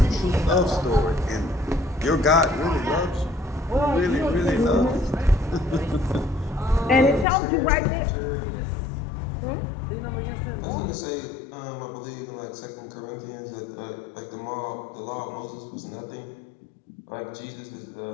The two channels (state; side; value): drops out; right; at 7.2 s